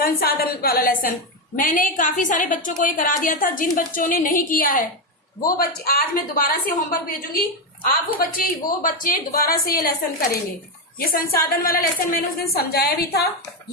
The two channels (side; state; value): both; normal; correlation 0.08